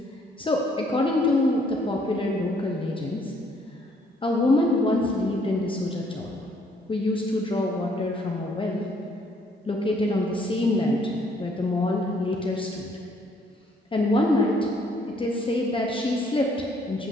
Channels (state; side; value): normal; both; correlation 0.65